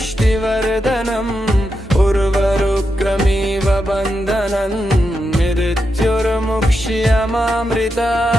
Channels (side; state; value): both; normal; correlation 0.86